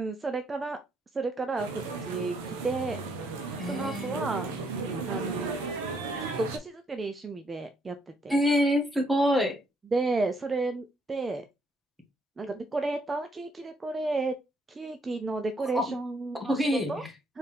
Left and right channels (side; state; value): both; normal; correlation 0.72